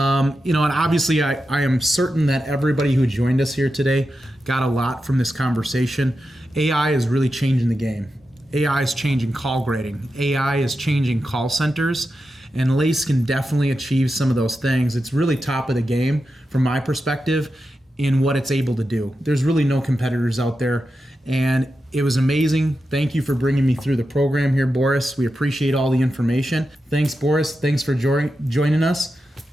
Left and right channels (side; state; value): both; normal; correlation 0.90